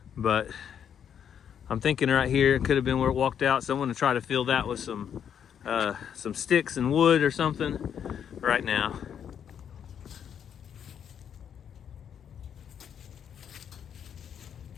but I'm thinking right here, it could have been where it walked out. So I'm gonna try to fill that with some sticks and wood or something right now.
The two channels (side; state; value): right; quieter; 8.5 dB